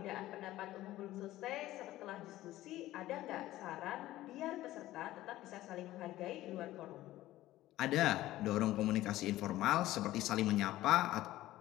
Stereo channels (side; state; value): right; quieter; 15.5 dB